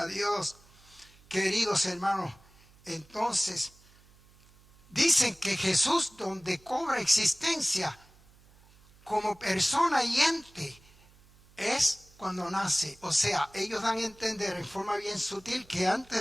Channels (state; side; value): noise; right; hum, 27 dB below the sound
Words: Dios. Queridos hermanos, entonces dicen que Jesús, donde cobra existencia como persona y ente, es cuando nace. O sea, ellos dan a entender en forma bien sutil que